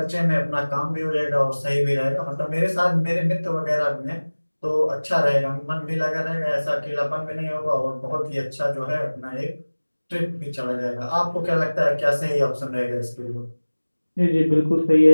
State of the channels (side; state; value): both; inverted; correlation -1.00